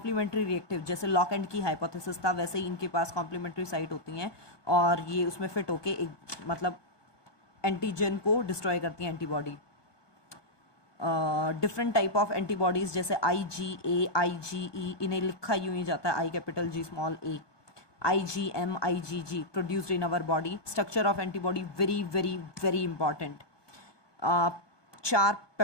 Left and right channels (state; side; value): late; right; 1.2 ms